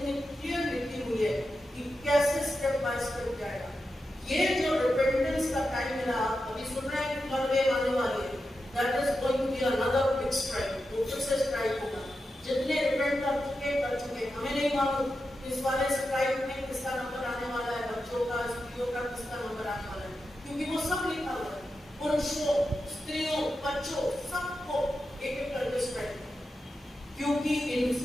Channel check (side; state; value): both; normal; correlation 0.89